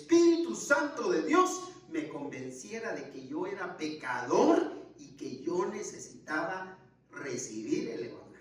Santo de Dios me convenciera de que yo era pecador y que yo necesitaba recibir el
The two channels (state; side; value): identical; both; correlation 1.00